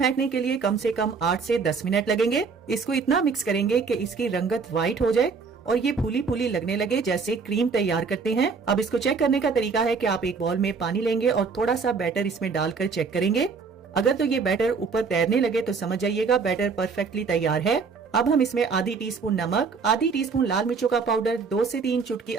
के लिए कम से कम 8 से 10 मिनट लगेंगे। इसको इतना मिक्स करेंगे कि इसकी रंगत व्हाइट हो जाए और ये फूली फूली लगने लगे जैसे क्रीम तैयार करते हैं। अब इसको चेक करने का तरीका है कि आप एक बाउल में पानी लेंगे और थोड़ा सा बैटर इसमें डालकर चेक करेंगे। अगर तो ये बैटर ऊपर तैरने लगे तो समझ जाइएगा बैटर परफेक्टली तैयार है। अब हम इसमें आधी टीस्पून नमक, आधी टीस्पून लाल मिर्चों का पाउडर, 2 से 3 चुटकी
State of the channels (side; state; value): left; quieter; 5.1 dB